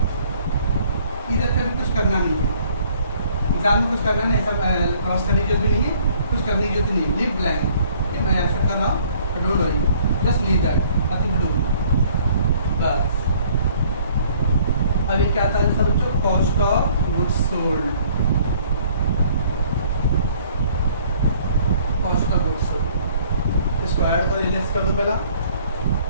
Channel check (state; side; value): inverted; both; correlation -0.58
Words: इधर पे भी कुछ करना नहीं है, एग्जाम में कुछ करना नहीं, ऐसा क्रॉस करने की जरूरत भी नहीं है, कुछ करने की जरूरत नहीं है, लीव ब्लैंक। मैं ऐसा कर रहा हूँ, don't worry, just leave that, nothing to do, बस। अभी क्या था सब बच्चों, cost of goods sold, cost of goods sold. इसको ऐड कर लेस कर दो पहला,